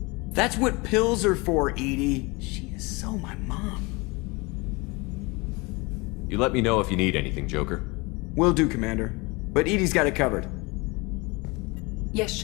That's what pills are for, Edie. She is so my mom. You let me know if you need anything, Joker. Will do, Commander. But Edie's got it covered. Yes,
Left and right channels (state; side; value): quieter; right; 26.2 dB